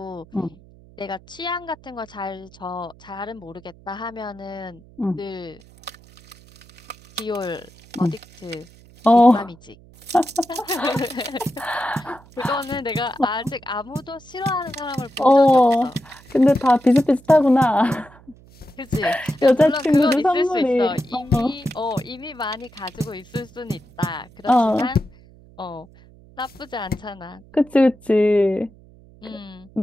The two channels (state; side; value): noise; right; hum, 25 dB below the sound